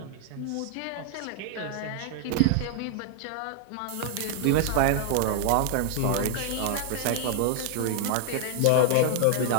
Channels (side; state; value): both; different; correlation -0.01